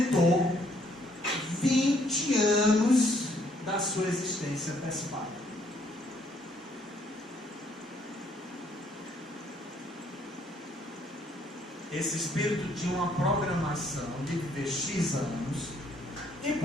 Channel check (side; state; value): both; normal; correlation 0.66